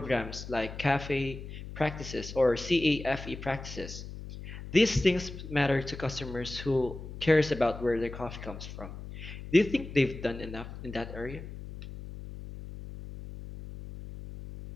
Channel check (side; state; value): left; noise; hum, 11 dB below the sound